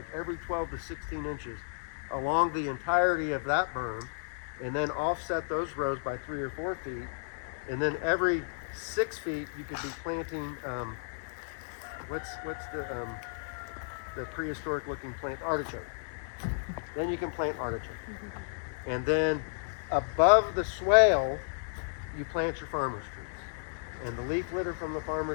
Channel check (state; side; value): silent; right; digital silence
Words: every 12 to 16 inches along the entirety of that berm, and then offset those rows by 3 or 4 feet, and then every 6 feet you could be planting what's the prehistoric looking plant? Artichoke. Then you can plant artichoke. And then above the swale, you plant your farmer's trees. And the leaf litter from the